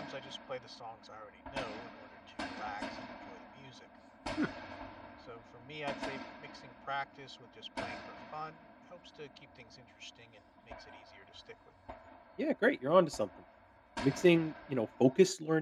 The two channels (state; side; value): identical; both; correlation 1.00